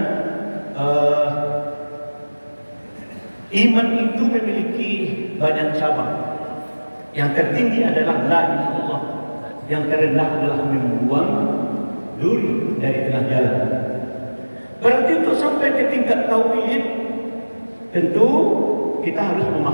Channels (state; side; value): inverted; both; correlation -1.00